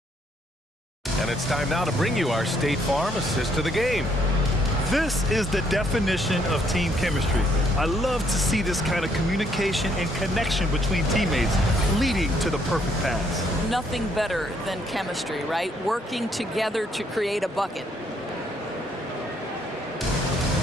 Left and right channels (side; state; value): both; normal; correlation 0.69